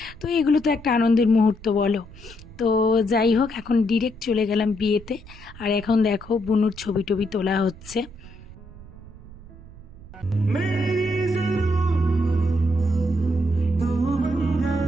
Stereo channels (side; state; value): right; noise; rumble, 18 dB below the sound